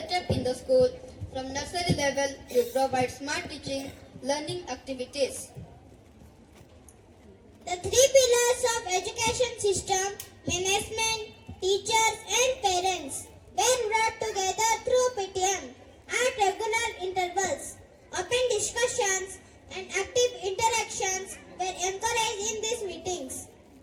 up in the school from nursery level to provide smart teaching, learning activities. The three pillars of education system, management, teachers and parents, were brought together through PTM at regular intervals. Open discussions and active interactions were encouraged in these meetings.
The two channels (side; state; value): both; identical; correlation 1.00